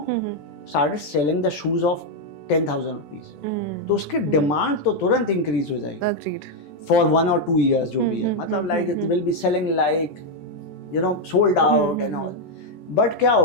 started selling the shoes of 10,000 रुपीज, तो उसकी डिमांड तो तुरंत इंक्रीज हो जाएगी फॉर 1 or 2 years जो भी है. मतलब like it will be selling like, you know, sold out and all. But क्या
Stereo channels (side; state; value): right; late; 14 ms